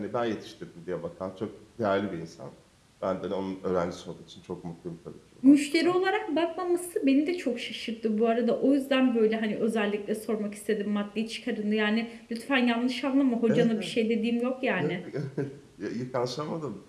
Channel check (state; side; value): identical; both; correlation 1.00